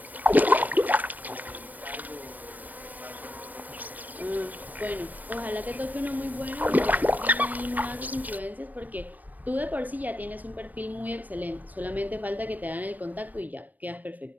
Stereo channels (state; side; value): late; left; 0.083 ms